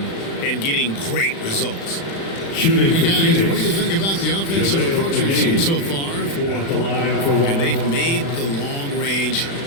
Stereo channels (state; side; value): late; right; 36 ms